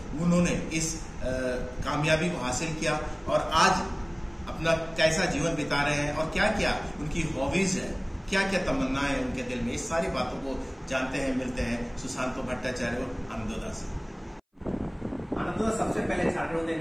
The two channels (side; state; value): both; identical; correlation 1.00